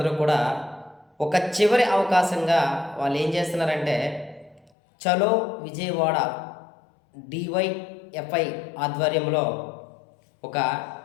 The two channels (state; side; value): drops out; right; at 4.7 s